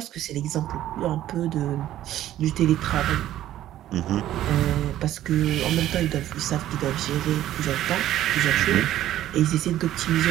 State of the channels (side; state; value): left; quieter; 13.0 dB